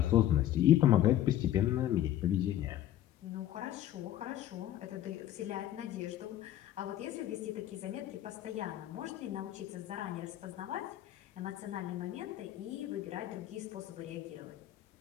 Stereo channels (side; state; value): right; quieter; 12.5 dB